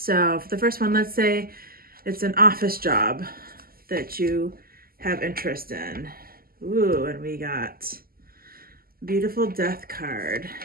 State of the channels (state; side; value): late; left; 0.43 ms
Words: for the first one, let's say it's an office job that you have interest in. Ooh, and we got beautiful death card.